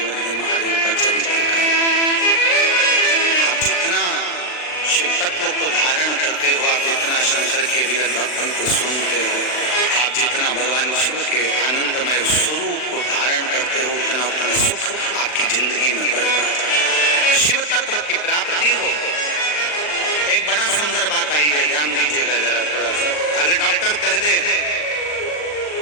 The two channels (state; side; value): late; right; 39 ms